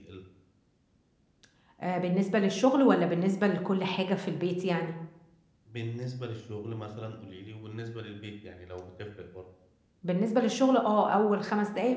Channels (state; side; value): identical; both; correlation 1.00